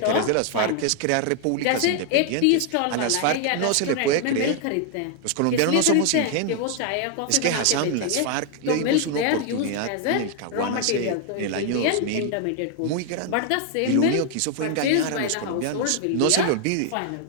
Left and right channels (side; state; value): both; different; correlation 0.00